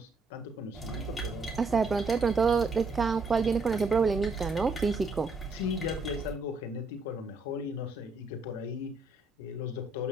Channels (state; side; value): quieter; left; 3.4 dB